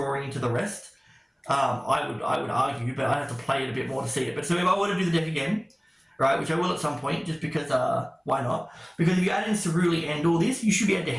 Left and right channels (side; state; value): both; identical; correlation 1.00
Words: into the rest. I would argue, but I'd have to play it a bit more to see it. But so if I were to do the deck again, right, which I will at some point, just because, why not? Because if you add in Ceruli and all this, you should be able to